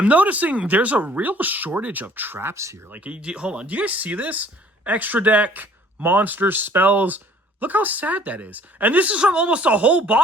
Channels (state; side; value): normal; both; correlation 0.55